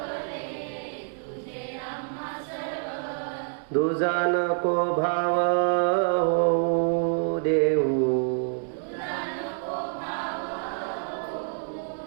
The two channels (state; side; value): silent; left; 60 dB below the other